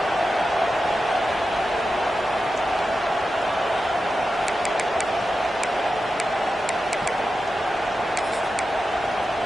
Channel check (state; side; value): normal; both; correlation 0.91